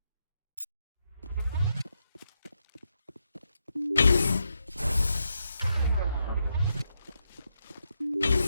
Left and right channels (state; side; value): inverted; both; correlation -0.83